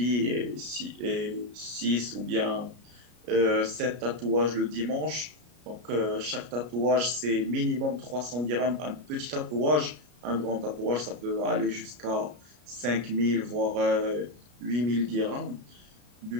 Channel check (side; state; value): left; late; 33 ms